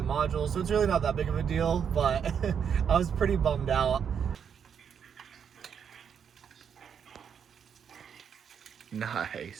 modules. So it's really not that big of a deal, but I was pretty bummed out.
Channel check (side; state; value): left; quieter; 7.5 dB